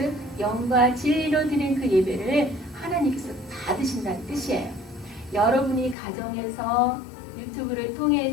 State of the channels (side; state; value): right; drops out; at 6.0 s